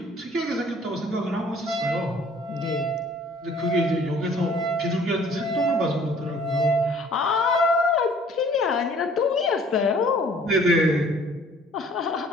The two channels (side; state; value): both; normal; correlation 0.55